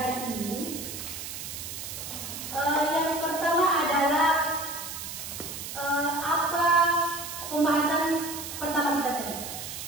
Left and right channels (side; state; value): right; noise; hiss, 8 dB below the sound